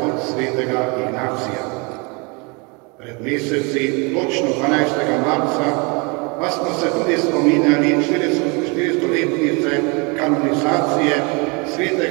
svetega Ignacija. Pred meseci, točno 12. marca, pa smo se tudi spominjali 400-letnice kanonizacije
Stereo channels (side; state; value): left; quieter; 30.4 dB